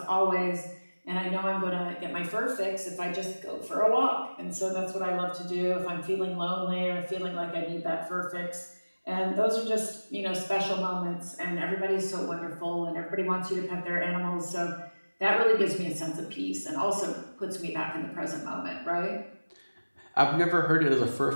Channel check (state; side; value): inverted; both; correlation -1.00